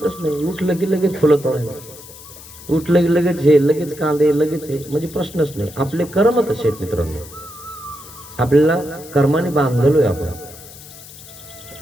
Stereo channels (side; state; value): left; noise; hiss, 18 dB below the sound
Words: नाही. उठलं की लगेच फुलं तोडायला, उठलं की लगेच हे, लगेच कांदे, लगेच हे, म्हणजे प्रश्नच नाही. आपले कर्म तसे आहेत मित्रांनो. आपल्याला कर्माने बांधलोय आपण.